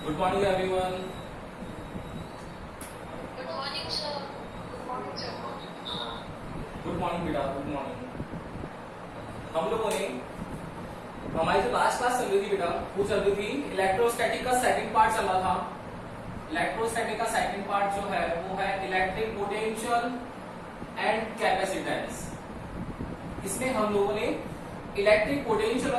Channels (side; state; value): both; identical; correlation 1.00